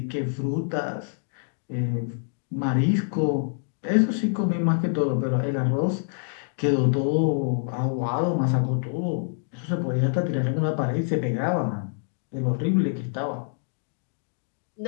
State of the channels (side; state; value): right; silent; digital silence